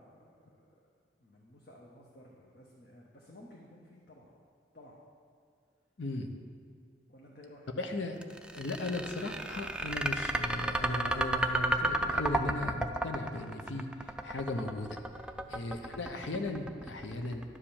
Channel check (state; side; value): normal; both; correlation 0.58